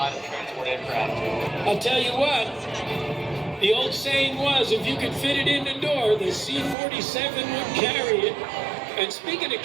of transport aircraft. I'll tell you what, the old saying was, if you could fit it in the door, the C-47 would carry it. And speaking of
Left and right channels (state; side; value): drops out; left; at 6.8 s